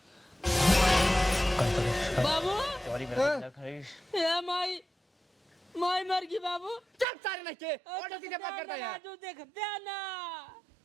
बाबू हाँ? ये माई माई मर गई बाबू। चल सारे नहीं के और जल्दी से बात करता यार। राजू देखते ना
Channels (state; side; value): drops out; left; at 7.1 s